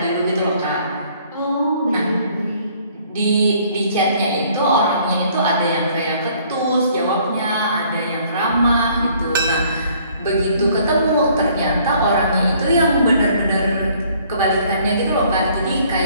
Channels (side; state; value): both; inverted; correlation -0.60